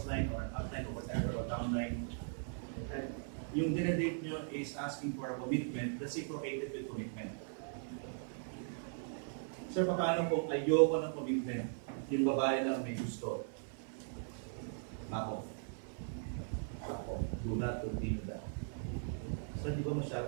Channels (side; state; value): left; silent; 52 dB below the other